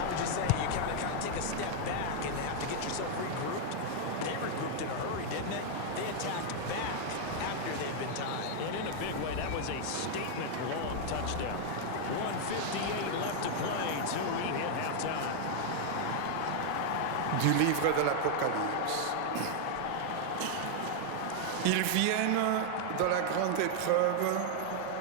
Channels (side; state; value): both; different; correlation 0.00